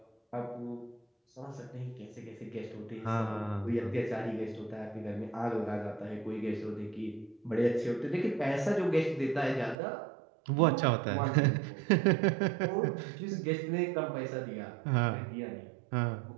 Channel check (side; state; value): left; drops out; at 9.8 s